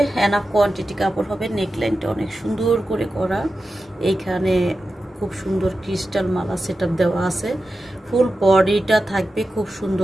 এনাফ কোয়ান্টিটি কাপড় হবে। নেকলাইনটা অনেক সুন্দর করে করা, এইখানে খুব সুন্দর ক্রিস্টাল মালা সেটআপ দেওয়া আছে। ফুল বডিটা থাকবে খুব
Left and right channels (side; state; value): both; normal; correlation 0.92